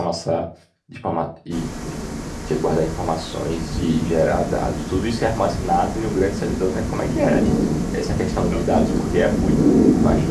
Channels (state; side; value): identical; both; correlation 1.00